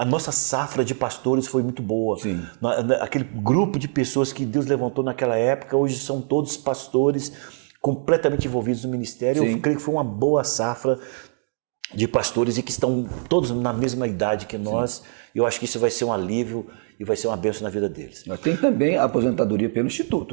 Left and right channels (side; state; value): left; silent; 56 dB below the other